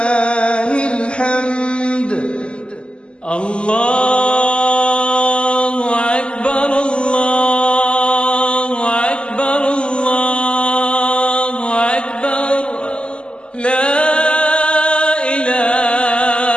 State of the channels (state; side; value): late; right; 0.052 ms